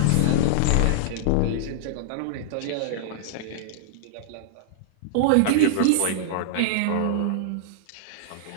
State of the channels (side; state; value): both; different; correlation -0.01